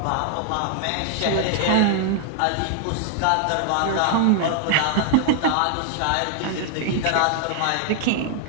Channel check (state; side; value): different; both; correlation 0.00